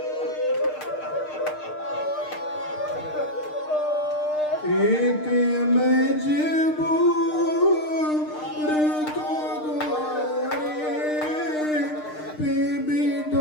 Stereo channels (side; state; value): right; late; 6.6 ms